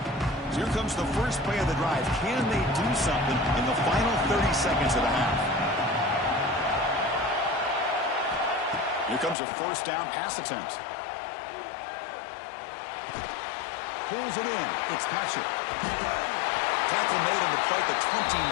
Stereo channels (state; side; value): drops out; right; at 9.3 s